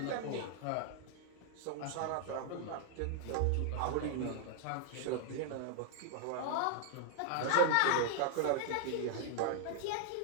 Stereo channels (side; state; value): both; different; correlation -0.01